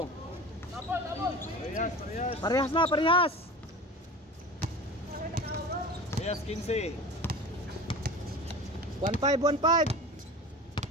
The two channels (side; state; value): both; normal; correlation 0.35